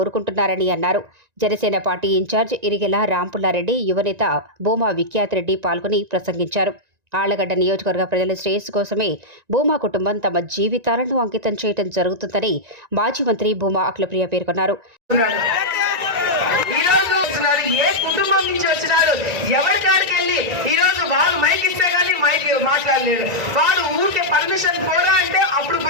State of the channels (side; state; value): left; late; 1.9 ms